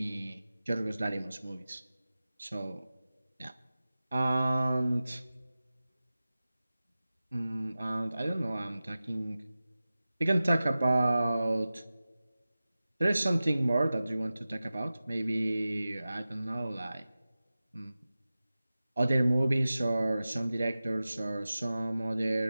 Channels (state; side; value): inverted; both; correlation -0.96